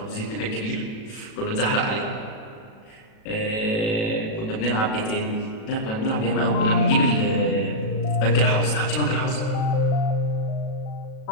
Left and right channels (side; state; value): right; late; 37 ms